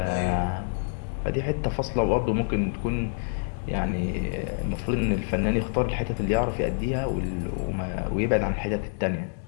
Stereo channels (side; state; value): right; silent; digital silence